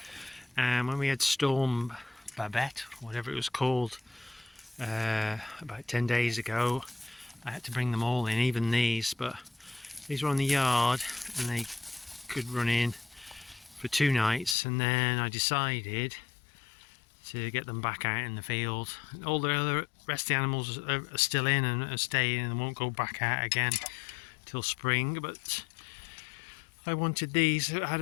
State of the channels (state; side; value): drops out; right; at 14.6 s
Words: And when we had Storm Babette, whatever it was called, about 10 days ago, I had to bring them all in, even these, but these were on the yard and they could run in for 2 nights, and then I decided to get them back out in the field. All the other rest of the animals are still in and are staying and won't go back out again till spring, but I wanted these. I had